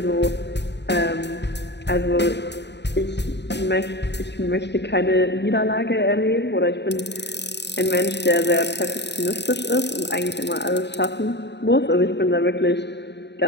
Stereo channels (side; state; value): right; late; 0.50 ms